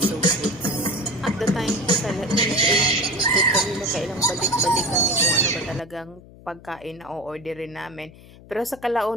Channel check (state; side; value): noise; left; hum, 21 dB below the sound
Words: of foods. At the time po talaga, kami nakailang balik-balik kami kung ano ba talagang pagkain na o-orderin namin. Pero sa